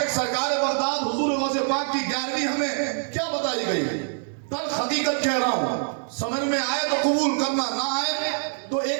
سرکار بغداد حضور غوث پاک کی 11ویں ہمیں کیا بتائی گئی؟ تلخ حقیقت کہہ رہا ہوں, سمجھ میں آئے تو قبول کرنا, نہ آئے تو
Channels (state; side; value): silent; left; digital silence